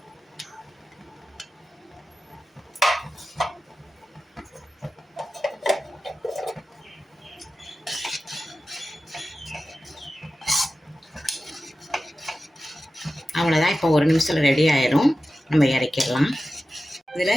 அவ்வளோதான். இப்போ 1 நிமிஷத்தில் ரெடி ஆயிரும். நம்ம இறக்கிடலாம்.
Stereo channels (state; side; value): normal; both; correlation 0.94